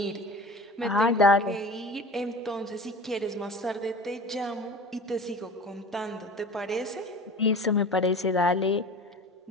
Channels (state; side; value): normal; both; correlation 0.38